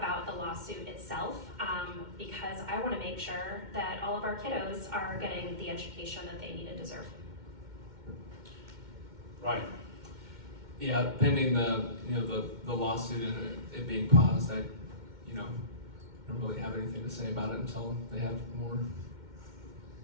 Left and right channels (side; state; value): left; late; 2.1 ms